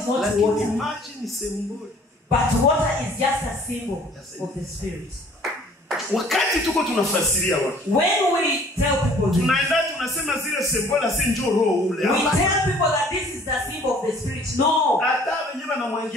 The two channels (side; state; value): both; normal; correlation 0.54